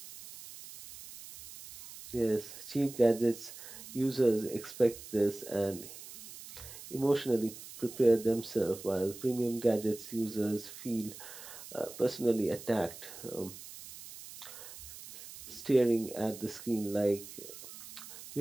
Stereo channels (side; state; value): right; noise; hiss, 14 dB below the sound